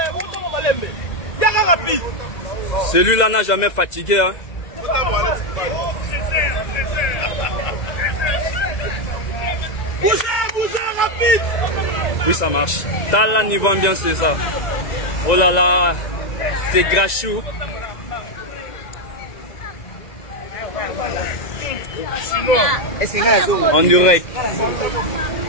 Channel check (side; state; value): right; late; 2.0 ms